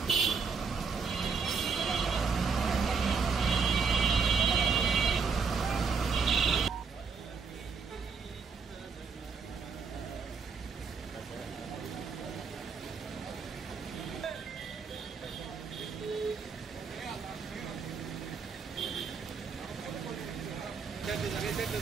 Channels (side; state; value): left; quieter; 5.4 dB